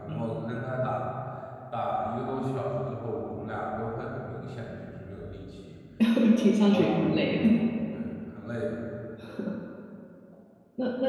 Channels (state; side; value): identical; both; correlation 1.00